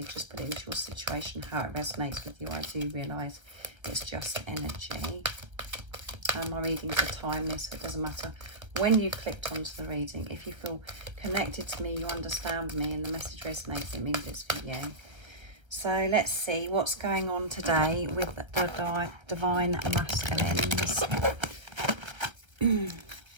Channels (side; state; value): left; late; 1.1 ms